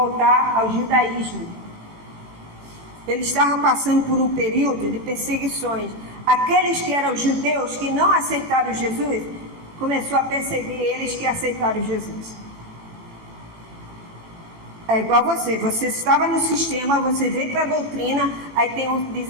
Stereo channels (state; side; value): late; left; 18 ms